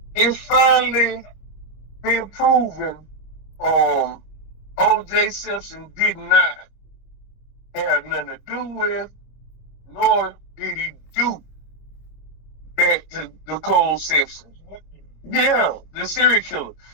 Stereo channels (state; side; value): late; right; 25 ms